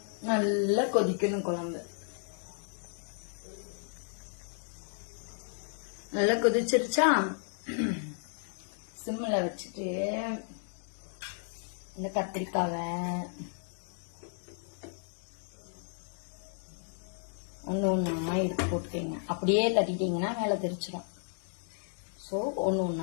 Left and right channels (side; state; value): right; silent; 56 dB below the other